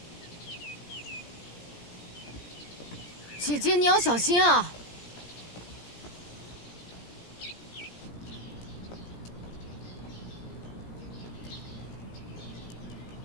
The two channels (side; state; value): right; late; 17 ms